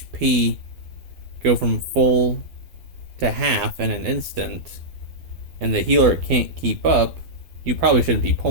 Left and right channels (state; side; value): late; left; 12 ms